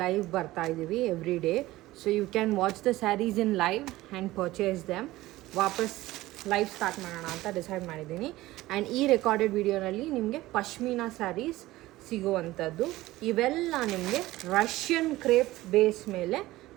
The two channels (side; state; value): left; quieter; 17.5 dB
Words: live ಬರ್ತಾ ಇದ್ದೀವಿ every day. So you can watch the sarees in live and purchase them. ವಾಪಸ್ live start ಮಾಡೋಣ ಅಂತ decide ಮಾಡಿದ್ದೀನಿ. And ಈ recorded ವಿಡಿಯೋನಲ್ಲಿ ನಿಮಗೆ ಪಶ್ಮೀನಾ ಸ್ಯಾರೀಸ್ ಸಿಗುವಂಥದ್ದು. ಇವೆಲ್ಲ ನಿಮಗೆ ರಷ್ಯನ್ ಕ್ರೇಪ್ ಬೇಸ್ ಮೇಲೆ